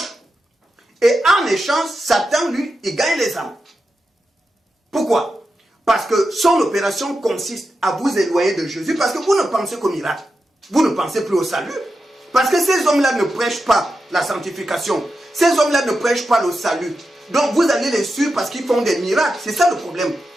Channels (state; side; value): normal; both; correlation 0.89